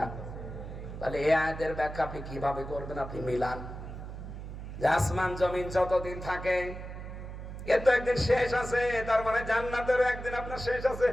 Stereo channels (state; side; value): noise; right; hum, 10 dB below the sound